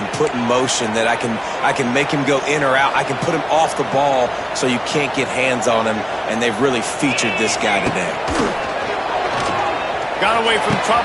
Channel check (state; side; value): identical; both; correlation 1.00